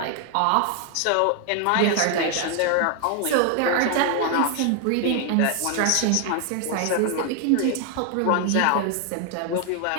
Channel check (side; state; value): both; different; correlation 0.00